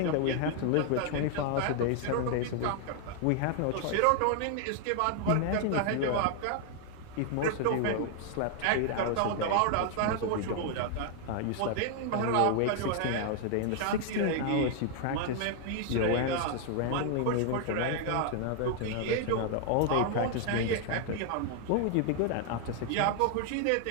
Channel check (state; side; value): different; both; correlation 0.00